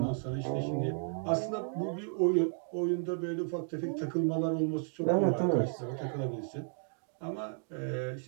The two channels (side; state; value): left; silent; digital silence